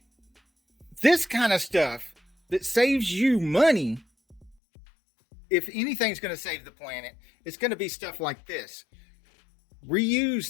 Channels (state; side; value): drops out; right; at 4.5 s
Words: This kind of stuff that saves you money, if anything's going to save the planet, it's going to be stuff like this. Reuse